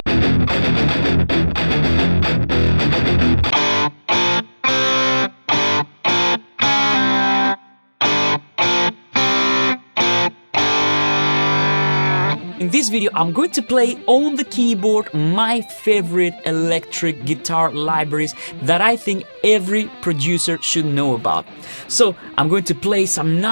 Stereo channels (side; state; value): both; inverted; correlation -1.00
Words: this video, I'm going to play on the keyboard my favorite electric guitar libraries that I think every producer should know about. So I'm going to play some